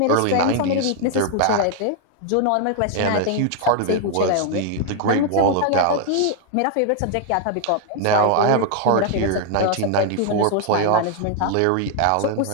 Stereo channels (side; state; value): both; different; correlation 0.00